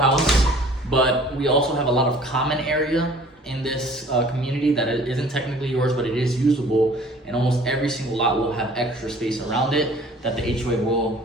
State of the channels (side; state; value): both; normal; correlation 0.51